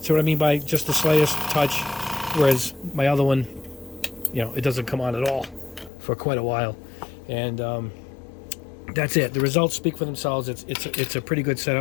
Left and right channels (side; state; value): right; drops out; at 5.9 s